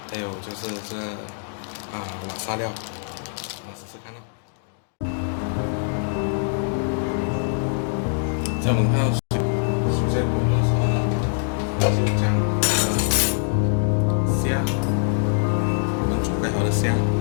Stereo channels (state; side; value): silent; right; digital silence